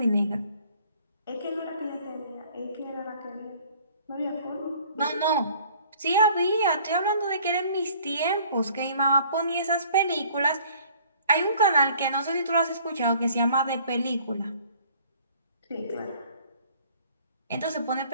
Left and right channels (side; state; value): both; inverted; correlation -0.55